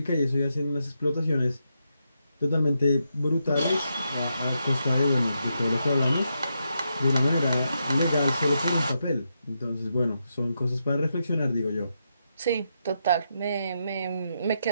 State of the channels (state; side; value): inverted; both; correlation -0.83